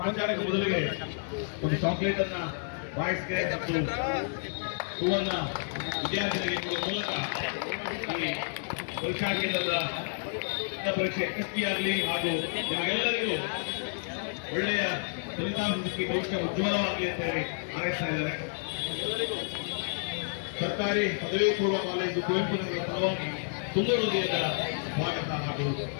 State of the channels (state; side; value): silent; right; 58 dB below the other